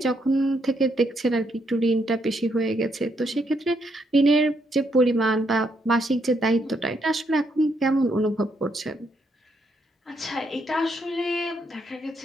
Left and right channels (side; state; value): both; normal; correlation 0.76